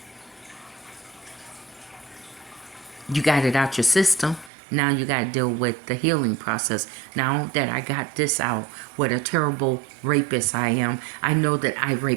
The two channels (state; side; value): drops out; left; at 4.5 s